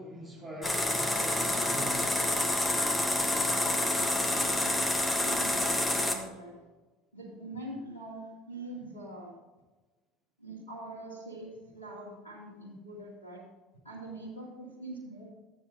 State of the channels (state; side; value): normal; both; correlation 0.77